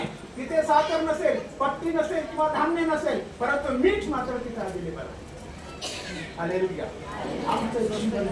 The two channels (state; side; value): identical; both; correlation 1.00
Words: तिथे साखर नसेल, पत्ती नसेल किंवा धान्य नसेल, परंतु मीठ मात्र तिथे अवेलेबल आहे. हालेलुया. आमचं जीवन